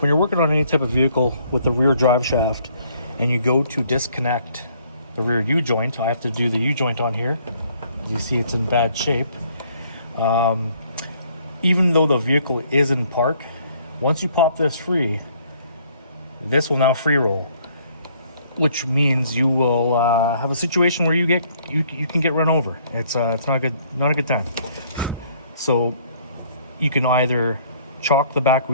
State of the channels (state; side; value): inverted; both; correlation -0.63